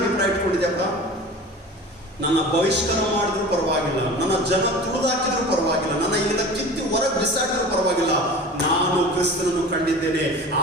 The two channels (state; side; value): normal; both; correlation 0.37